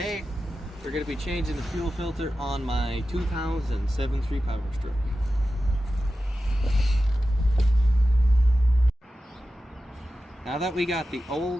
we're going to be changing the fuel filter on my 2007 Power Stroke. Now that we got the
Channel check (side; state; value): both; normal; correlation 0.93